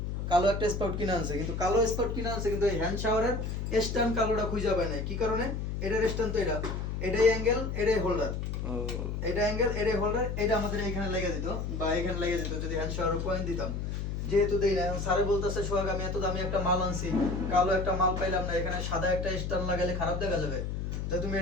কালো একটা স্পাউট কিনে আনছে। কিন্তু কালো স্পাউট কিনে আনছে কিন্তু এই হ্যান্ড শাওয়ারের স্ট্যান্ড কালোটা খুঁজে পায় নাই। কি কারণে? এটার স্ট্যান্ড তো এটাই অ্যাঙ্গেল, এটাই হোল্ডার, এটা অ্যাঙ্গেল, এটাই হোল্ডার, এটা আমাদের এখানে লেগে দিত বা এখানে লেগে যেত যদি হ্যান্ড শাওয়ার পয়েন্ট দিতাম। যেহেতু দেই না, এখন স্যারে বলতেছে সোহাগ আমি এত দামি একটা মাল আনছি, কালো একটা মাল পাইলাম না, এখানে সাদা একটা স্ট্যান্ড লাগাইলে খারাপ দেখা যাবে, তো তুমি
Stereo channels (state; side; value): noise; left; hum, 3 dB below the sound